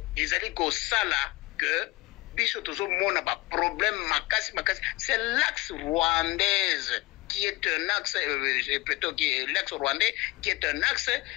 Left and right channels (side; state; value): right; quieter; 20.9 dB